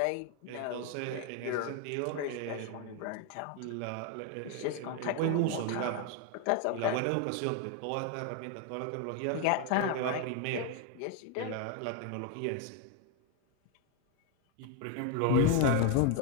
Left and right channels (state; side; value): different; both; correlation 0.01